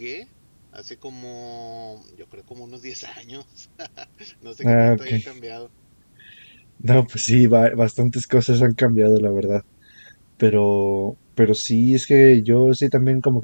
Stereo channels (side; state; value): both; inverted; correlation -1.00